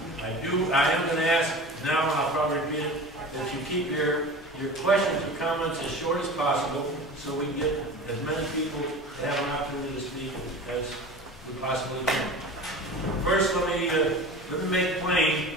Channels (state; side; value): noise; right; rumble, 28 dB below the sound